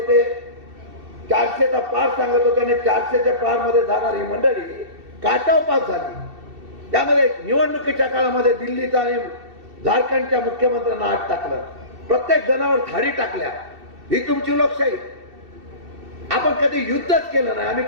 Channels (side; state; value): left; late; 2.7 ms